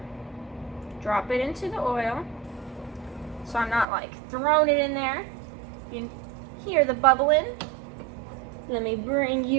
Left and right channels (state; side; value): drops out; left; at 3.9 s